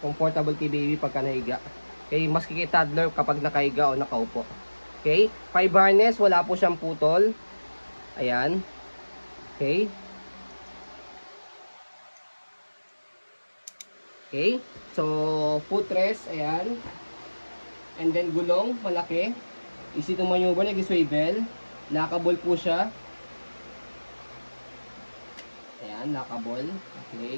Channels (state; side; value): inverted; both; correlation -1.00